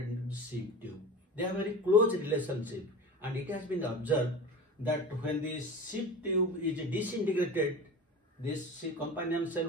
into the sieve tube. They have a very close relationship, and it has been observed that when the sieve tube is disintegrated, this companion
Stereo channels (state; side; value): normal; both; correlation 0.32